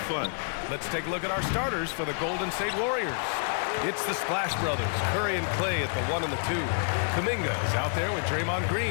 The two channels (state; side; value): silent; right; 59 dB below the other